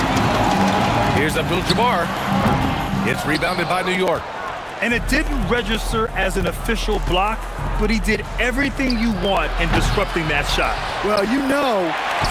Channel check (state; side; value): identical; both; correlation 1.00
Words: Here's Abdul-Jabbar. It's rebounded by New York. And it didn't register as an official block, but he did everything you want in disrupting that shot. Well, you know,